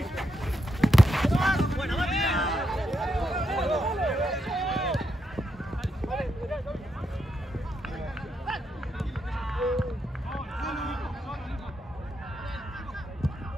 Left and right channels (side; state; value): both; normal; correlation 0.81